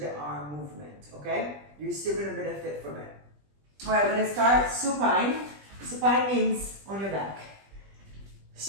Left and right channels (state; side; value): late; left; 20 ms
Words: arm movement, okay? You're still gonna benefit from it. All right, we're gonna start supine. Supine means on your back.